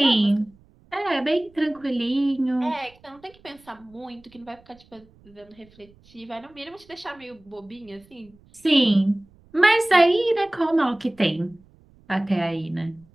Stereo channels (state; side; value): noise; right; rumble, 29 dB below the sound